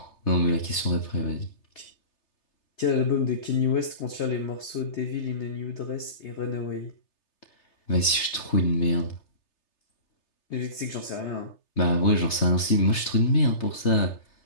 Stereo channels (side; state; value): right; late; 3.3 ms